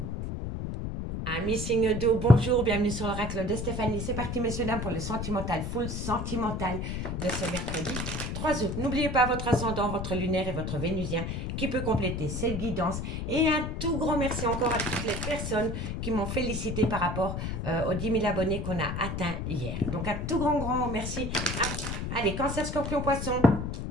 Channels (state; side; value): noise; left; rumble, 4 dB below the sound